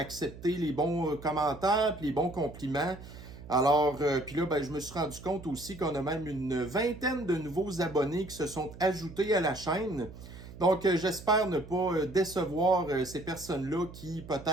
les bons commentaires, puis les bons compliments. Alors, puis là, je me suis rendu compte aussi qu'on a même une vingtaine de nouveaux abonnés qui se sont ajoutés à la chaîne. Donc, j'espère ne pas décevoir ces personnes-là qui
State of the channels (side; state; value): right; noise; hum, 15 dB below the sound